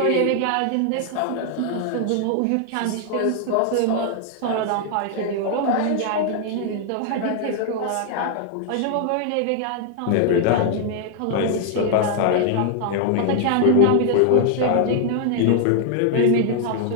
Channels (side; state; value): both; different; correlation 0.00